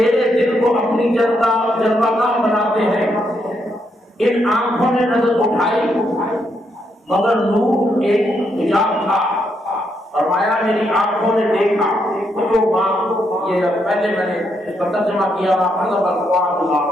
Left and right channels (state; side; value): normal; both; correlation 0.78